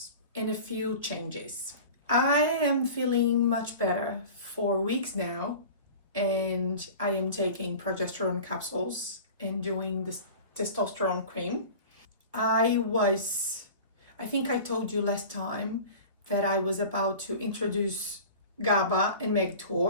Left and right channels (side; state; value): both; inverted; correlation -0.38